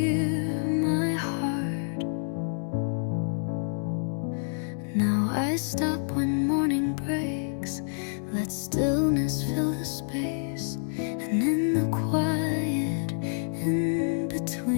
my heart. Now I stop when morning breaks, let stillness fill the space, and in the quiet in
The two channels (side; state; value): right; silent; 59 dB below the other